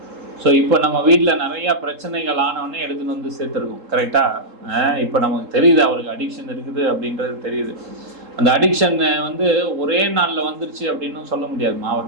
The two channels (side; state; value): left; late; 3.7 ms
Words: ஸோ இப்போ நம்ம வீட்டில் நிறையா பிரச்சனைகள் ஆனவொடனே எடுத்துகிட்டு வந்து சேர்த்துருக்கோம். கரெக்டாக இப்போ நமக்கு தெரியுது அவருக்கு அடிக்ஷன் இருக்குது அப்படின்றது தெரியுது. அந்த அடிக்ஷன் ஒரே நாளில் வந்துருச்சு அப்படின்னு சொல்ல முடியாதுமா.